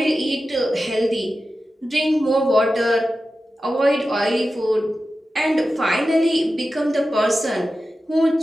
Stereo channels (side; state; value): both; normal; correlation 0.93